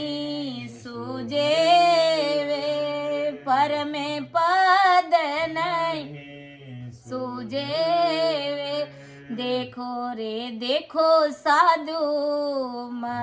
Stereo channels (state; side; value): identical; both; correlation 1.00